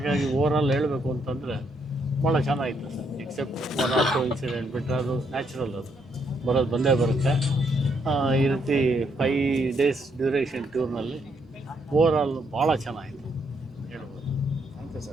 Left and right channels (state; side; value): normal; both; correlation 0.74